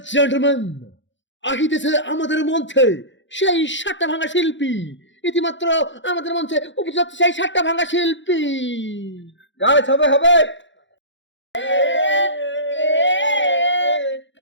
gentlemen, আহিতেছে আমাদের মঞ্চে সেই সাতটা ভাঙা শিল্পী। ইতিমাত্র আমাদের মঞ্চে উপস্থিত সেই সাতটা ভাঙা শিল্পী। গাইস হবে হবে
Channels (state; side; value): late; right; 0.54 ms